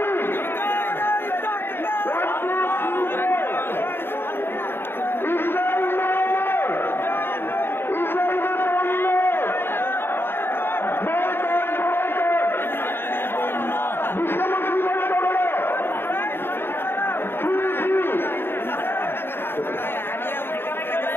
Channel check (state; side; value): late; right; 0.11 ms